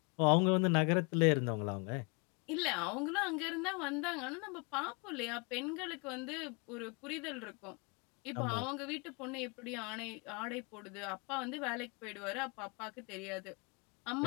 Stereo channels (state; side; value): quieter; right; 32.5 dB